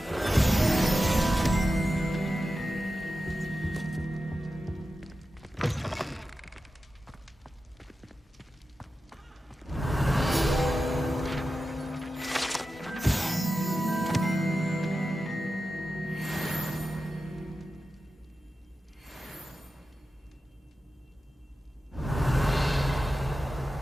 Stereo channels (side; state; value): both; normal; correlation 0.92